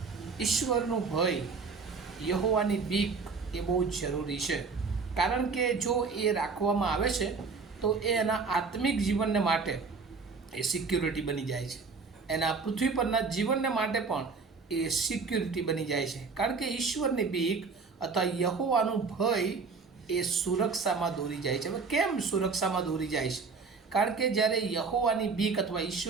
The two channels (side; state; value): left; quieter; 4.8 dB